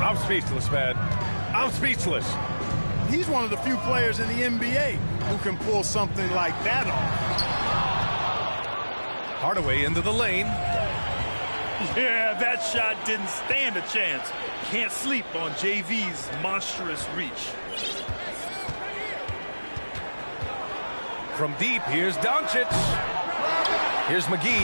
speechless, man. I'm speechless. He's one of the few players in the NBA who can pull something like that off. Hardaway into the lane. Yeah, that shot didn't stand a chance. Can't sleep on JV's monstrous reach. From deep, here's Doncic. Here's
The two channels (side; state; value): both; inverted; correlation -1.00